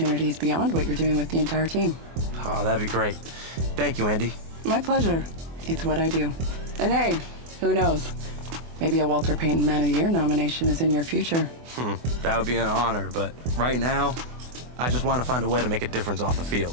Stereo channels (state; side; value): late; left; 24 ms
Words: beyond what you're doing with the entire team. Oh, that'd be great. Thank you, Andy. My pleasure. It's what I do. And hey, who knows? Maybe a Walter Payton Man of the Year nomination is in your future. That would be an honor, but right now, I just want to find a way to make a difference off the field.